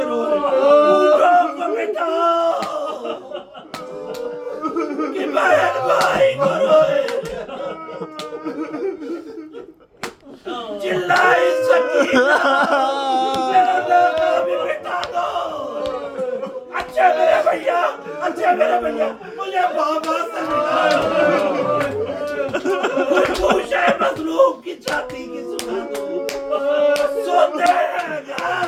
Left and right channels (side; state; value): both; identical; correlation 1.00